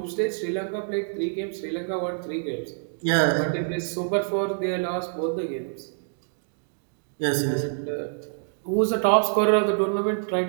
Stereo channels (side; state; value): left; silent; digital silence